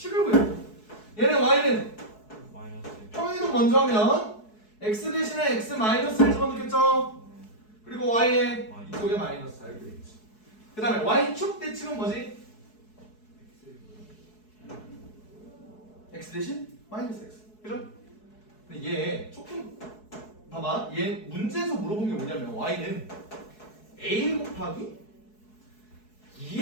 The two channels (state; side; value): late; right; 4.7 ms